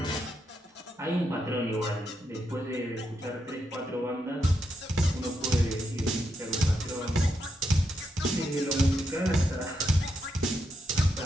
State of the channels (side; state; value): both; normal; correlation 0.82